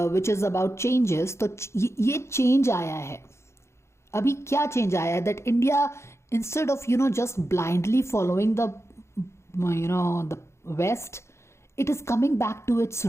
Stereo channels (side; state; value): right; late; 0.13 ms